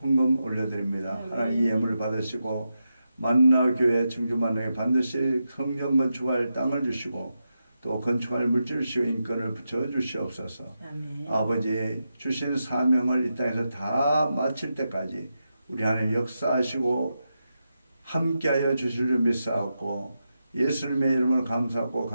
헌금 올려드립니다. 하나님 이 예물을 받으시고 만나교회 청주만나에 반드시 성전 건축할 땅을 주시고 또 건축할 물질 주시고 인권을 붙여 주시옵소서. 아멘. 아버지 주신 사명을 이 땅에서 다 마칠 때까지 우리 하나님 역사하시고 함께하여 주실 줄 믿사옵고 예수님의 이름으로 감사하고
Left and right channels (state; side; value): inverted; both; correlation -0.88